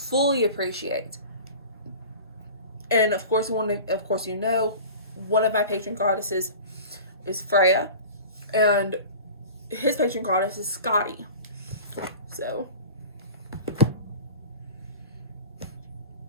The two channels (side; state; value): both; inverted; correlation -0.38